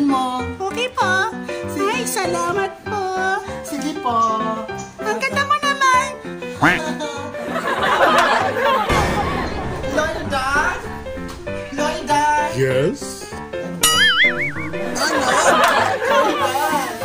mo. Okay po. Ay, salamat po. Sige po. Ang ganda mo naman. Loida? Loida? Yes?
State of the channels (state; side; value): identical; both; correlation 1.00